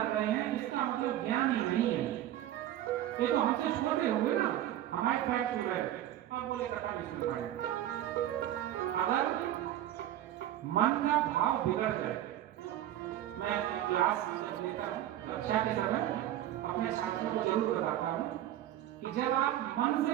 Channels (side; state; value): left; quieter; 12.6 dB